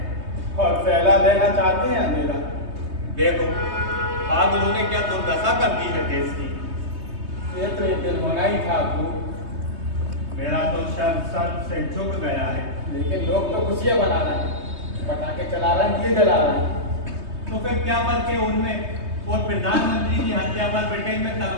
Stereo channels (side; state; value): left; late; 3.2 ms